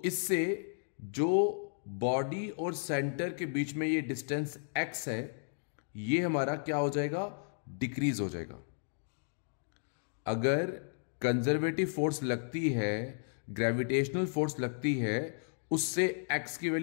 इससे जो बॉडी और सेंटर के बीच में ये डिस्टेंस x है, ये हमारा क्या हो जाएगा? डिक्रीज हो जाएगा। अगर कंजर्वेटिव फोर्स लगती है, ग्रेविटेशनल फोर्स लगती है, उससे x की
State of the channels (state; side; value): silent; right; digital silence